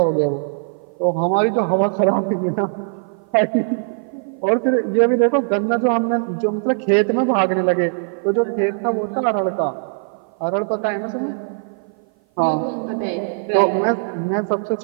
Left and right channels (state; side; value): silent; left; 56 dB below the other